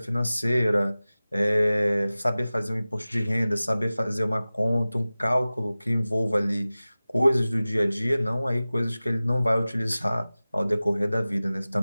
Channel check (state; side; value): inverted; both; correlation -0.97